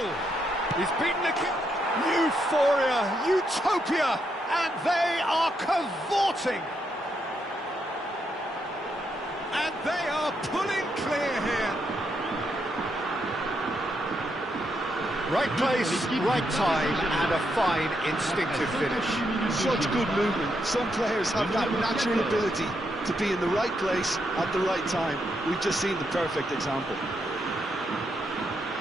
He's beaten the kick. Euphoria, utopia! And they are cavorting. And they are pulling clear here. Right place, right time, and a fine instinctive finish. Such good movement. Some players have that natural ability to be in the right place at the right time. We've just seen the perfect example.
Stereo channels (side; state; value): both; normal; correlation 0.79